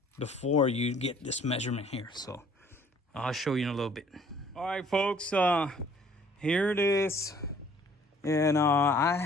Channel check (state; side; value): normal; both; correlation 0.57